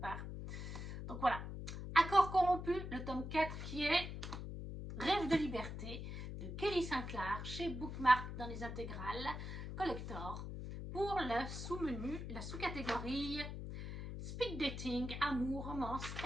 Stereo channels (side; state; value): left; noise; hum, 6 dB below the sound